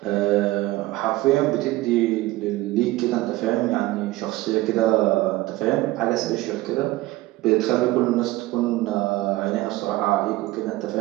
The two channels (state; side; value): quieter; left; 18.4 dB